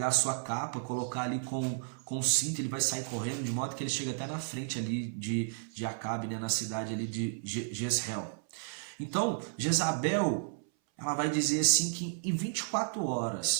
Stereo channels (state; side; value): silent; left; 56 dB below the other